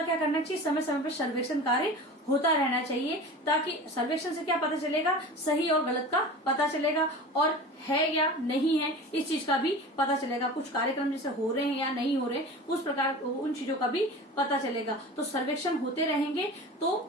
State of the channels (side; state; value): both; normal; correlation 0.35